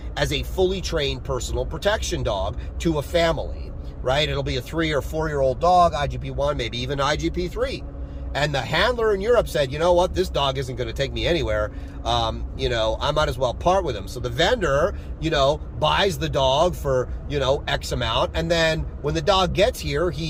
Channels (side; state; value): both; identical; correlation 1.00